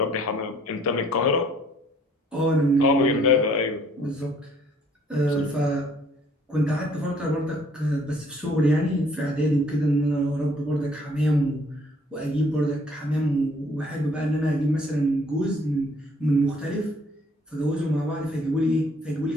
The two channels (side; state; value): both; normal; correlation 0.61